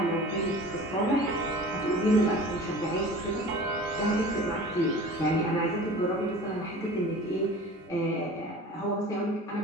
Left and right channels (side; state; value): both; normal; correlation 0.40